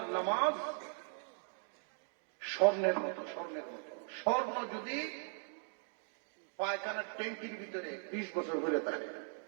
নামাজ স্বর্ণের মতো, স্বর্ণের মতো। স্বর্ণ যদি পায়খানার ট্যাঙ্কির ভিতরে 20 বছর ধরে থাকে,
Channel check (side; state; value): left; silent; 52 dB below the other